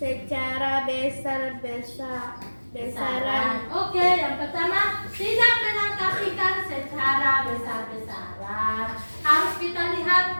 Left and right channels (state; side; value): inverted; both; correlation -1.00